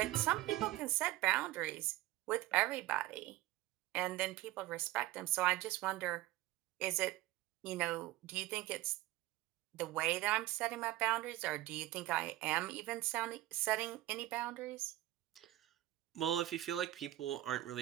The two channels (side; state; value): left; quieter; 16.3 dB